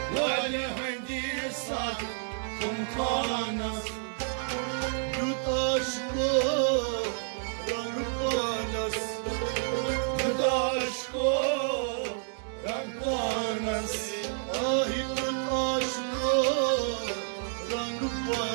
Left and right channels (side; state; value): left; silent; 55 dB below the other